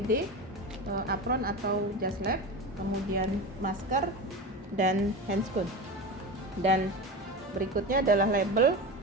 apron atau jas lab, kemudian masker dan handscoon. Dan berikutnya adalah label,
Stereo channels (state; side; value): normal; both; correlation 0.25